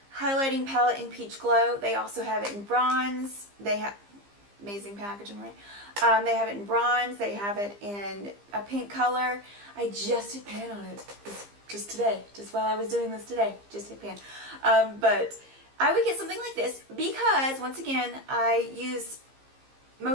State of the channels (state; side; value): late; left; 15 ms